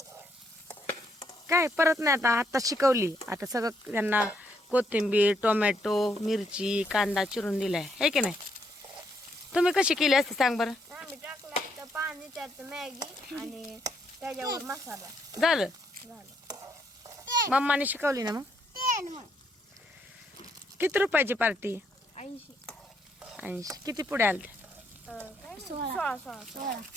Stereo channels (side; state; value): both; normal; correlation 0.74